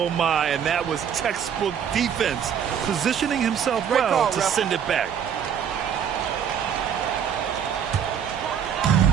And that was textbook defense. Positioning himself well to send it back.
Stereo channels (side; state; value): left; quieter; 8.3 dB